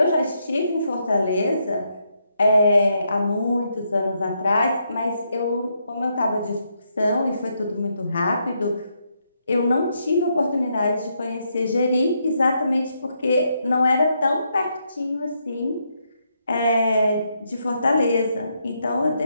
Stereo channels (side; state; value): both; inverted; correlation -0.78